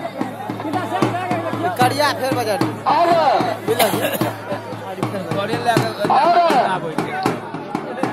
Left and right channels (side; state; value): both; identical; correlation 1.00